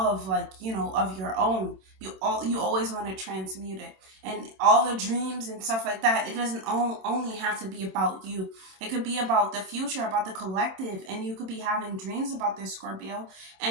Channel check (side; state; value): left; late; 27 ms